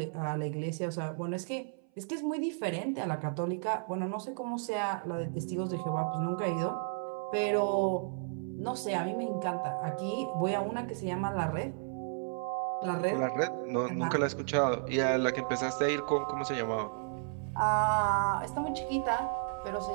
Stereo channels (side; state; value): left; silent; 56 dB below the other